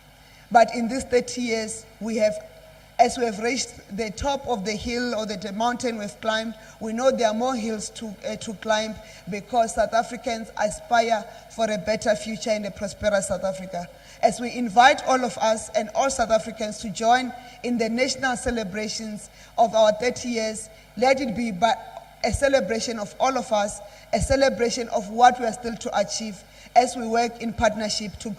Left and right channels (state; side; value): identical; both; correlation 1.00